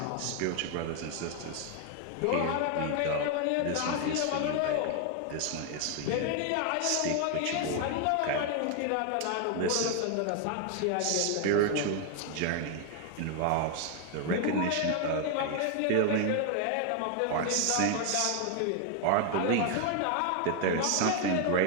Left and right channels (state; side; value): different; both; correlation 0.01